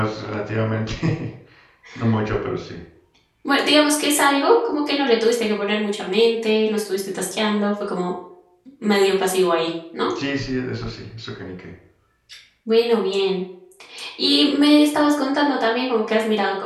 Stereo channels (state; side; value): identical; both; correlation 1.00